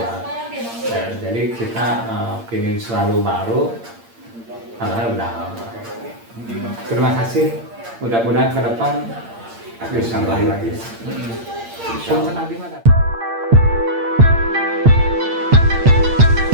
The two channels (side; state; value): left; late; 8.7 ms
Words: Ya, jadi kita ingin selalu baru, padahal udah lama. Terima kasih. Mudah-mudahan ke depan bisa lagi. Punten abdi mah.